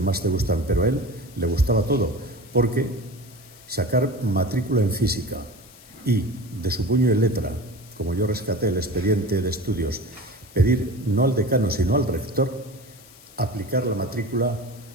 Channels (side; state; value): left; noise; hiss, 23 dB below the sound